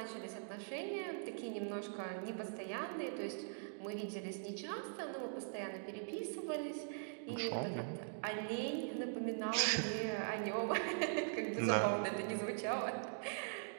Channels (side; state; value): left; silent; digital silence